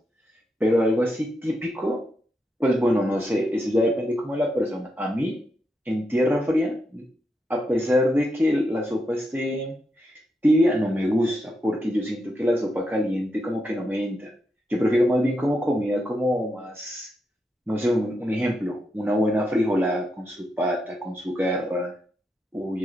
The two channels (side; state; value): both; normal; correlation 0.83